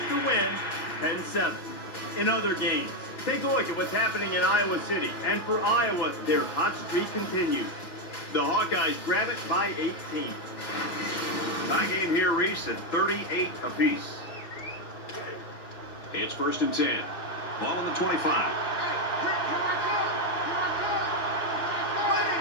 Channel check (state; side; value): late; right; 6.1 ms